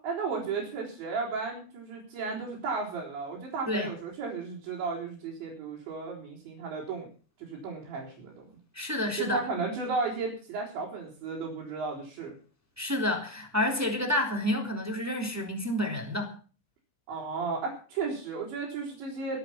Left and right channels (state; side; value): normal; both; correlation 0.05